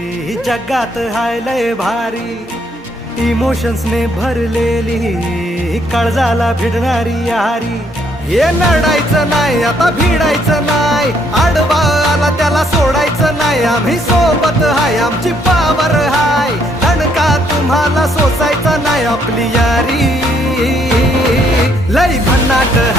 जगात हाय लय भारी, इमोशन्स ने भरलेली काळजाला भिडणारी यारी। हे लढायचं नाही आता भिडायचं नाही, आडवा आला त्याला सोडायचं नाही, आम्ही सोबत हाय आमची पावर हाय, दणका तुम्हाला सोसायचा नाही। आपली यारी लय भन्नाट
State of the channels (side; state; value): both; normal; correlation 0.69